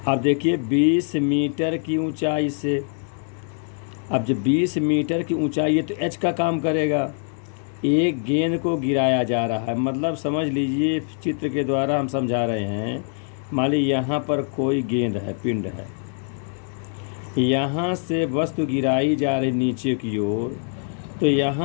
अब देखिए, 20 मीटर की ऊंचाई से, अब जब 20 मीटर की ऊंचाई है तो एच का काम करेगा। एक गेंद को गिराया जा रहा है, मतलब समझ लीजिए, चित्र के द्वारा हम समझा रहे हैं। मान लीजिए यहाँ पर कोई गेंद है, पिंड है, यहाँ से वस्तु गिराई जा रही नीचे की ओर, तो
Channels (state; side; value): silent; right; 63 dB below the other